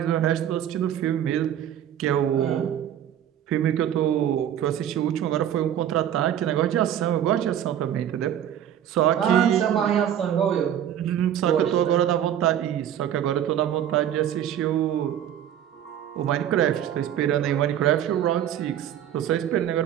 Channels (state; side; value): quieter; left; 10.4 dB